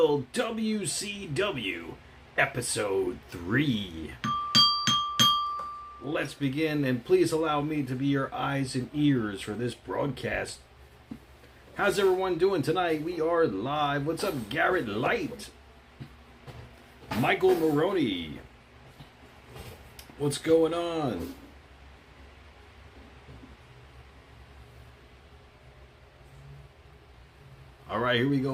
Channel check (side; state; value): both; identical; correlation 1.00